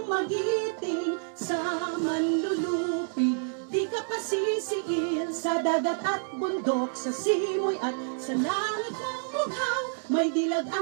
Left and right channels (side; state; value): left; silent; digital silence